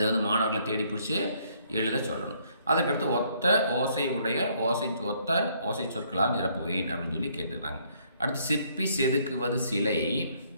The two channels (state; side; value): inverted; both; correlation -0.67